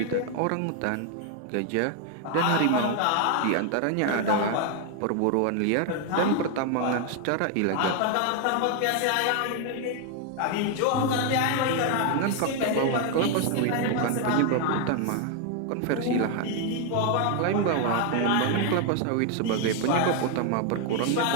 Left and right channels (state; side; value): different; both; correlation 0.01